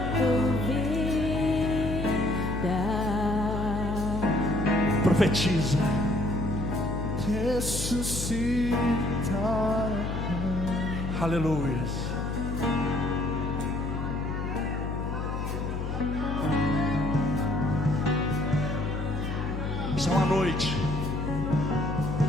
vida. Profetiza. ressuscitar. Aleluia. Isso é uma noite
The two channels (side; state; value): left; noise; hum, 3 dB below the sound